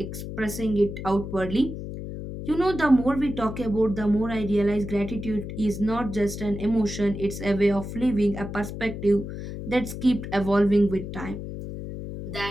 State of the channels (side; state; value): left; noise; hum, 8 dB below the sound